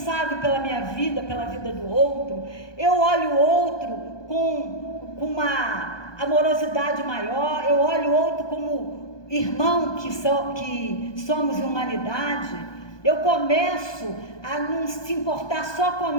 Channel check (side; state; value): right; late; 1.2 ms